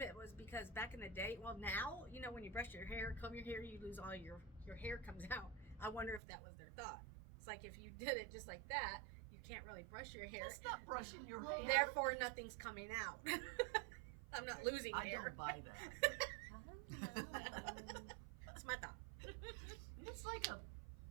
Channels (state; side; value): drops out; left; at 6.2 s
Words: it was because back in the day, well now, you know, when you brush your hair, comb your hair, you lose all your hair comes out. I wonder if that was their thought. It's like if you did it just like that, you can't really brush your hair. That's not brushing your hair. Therefore nothing's coming out. I'm not losing I hair. don't buy that. That's my thought. It's like a,